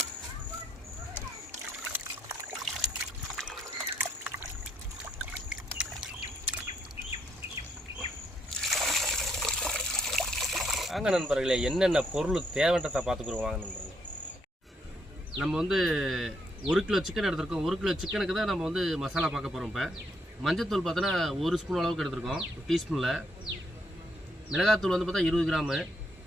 வாங்க நண்பர்களே, என்னென்ன பொருள் தேவைன்றதை பார்த்துக்குறோம். வாங்க நண்பர்களே, நம்ம 1 கிலோ சிக்கன் எடுத்துருக்கோம். 1 கிலோ சிக்கனுக்கு தான் நம்ம மசாலா பார்க்க போகிறோம். இப்போ மஞ்சத்தூள் பார்த்தோன்னா 1 ஸ்பூன் அளவுக்கு எடுத்துருக்கோம், டீஸ்பூனில். மிளகாத்தூள் பார்த்தா 20 கிராமு,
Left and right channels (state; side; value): normal; both; correlation 0.74